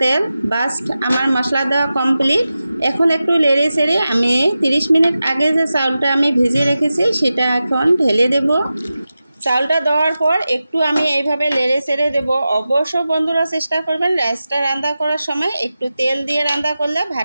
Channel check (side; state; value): both; inverted; correlation -0.93